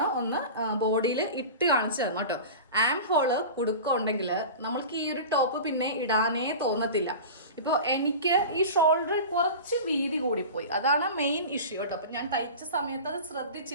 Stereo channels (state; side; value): inverted; both; correlation -0.32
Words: ഒന്ന് ബോഡിയിൽ ഇട്ട് കാണിച്ചു തന്നു കേട്ടോ. ആം ഹോള് കുടുക്കുണ്ടെങ്കിൽ നമ്മൾക്ക് ഈ ഒരു ടോപ്പ് പിന്നെ ഇടാനേ തോന്നത്തില്ല. ഇപ്പോൾ എനിക്ക് ഈ ഷോൾഡർ കുറച്ച് വീതി കൂടിപ്പോയി, അതാണ് മെയിൻ ഇഷ്യൂ കേട്ടോ. അപ്പം ഞാൻ തയ്ച്ച സമയത്ത് അത്